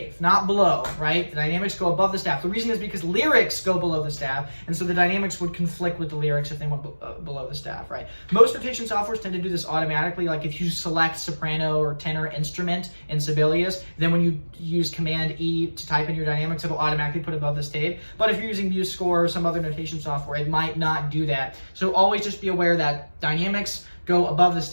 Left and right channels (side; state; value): both; inverted; correlation -1.00